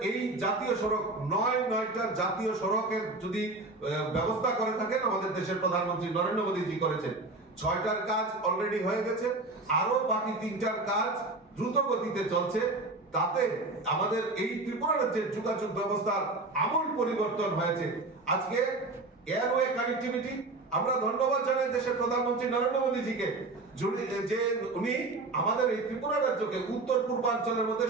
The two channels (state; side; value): quieter; left; 3.2 dB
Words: এই জাতীয় সড়ক 9টা জাতীয় সড়কের যদি ব্যবস্থা করে থাকেন আমাদের দেশের প্রধানমন্ত্রী নরেন্দ্র মোদীজি করেছেন। 6টার কাজ অলরেডি হয়ে গেছে, আরো বাকি 3টার কাজ দ্রুত গতিতে চলছে। তাতে আমাদের এই ত্রিপুরা রাজ্যের যোগাযোগ ব্যবস্থার আমূল পরিবর্তন হয়েছে। আজকে এয়ারওয়ে কানেক্টিভিটি আমরা ধন্যবাদ জানাই দেশের প্রধানমন্ত্রী নরেন্দ্র মোদীজিকে যে উনি আমাদের এই ত্রিপুরা রাজ্যকে উত্তর পূর্বাঞ্চলের মধ্যে